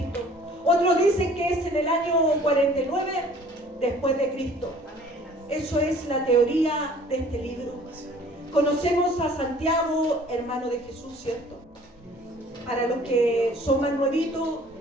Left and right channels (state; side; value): normal; both; correlation 0.52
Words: Otros dicen que es en el año 49 después de Cristo. Eso es la teoría de este libro. Conocemos a Santiago, hermano de Jesús, ¿cierto? Para los que son más nuevitos,